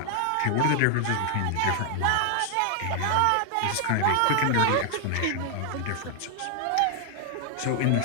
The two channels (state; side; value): different; both; correlation 0.00